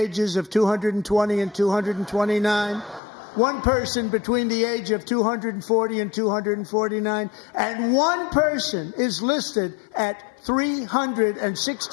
of 220 and 229, one person between the age of 240 and 249, and one person is listed at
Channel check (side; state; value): right; drops out; at 3.0 s